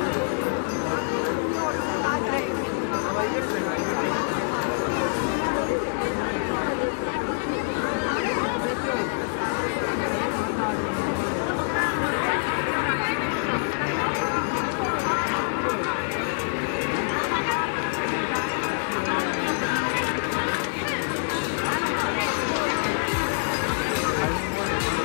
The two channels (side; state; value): right; silent; digital silence